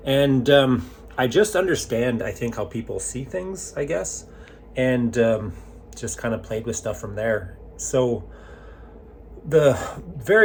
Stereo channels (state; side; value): identical; both; correlation 1.00